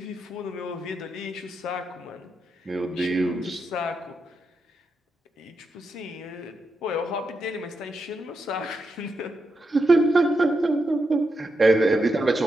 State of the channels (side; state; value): both; normal; correlation 0.85